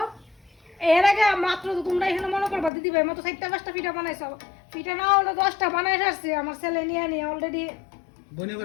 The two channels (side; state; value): right; drops out; at 2.7 s